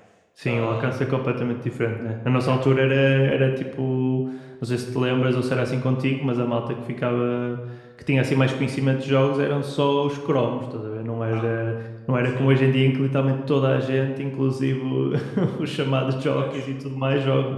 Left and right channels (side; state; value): both; identical; correlation 1.00